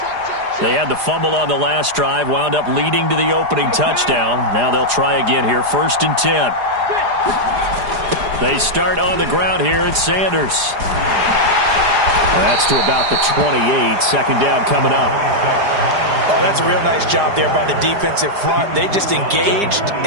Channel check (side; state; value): left; late; 4.9 ms